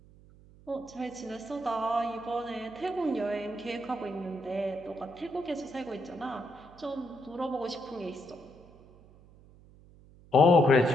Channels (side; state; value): right; noise; hum, 24 dB below the sound